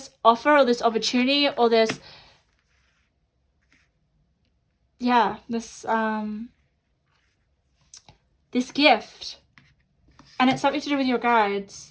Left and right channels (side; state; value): both; identical; correlation 1.00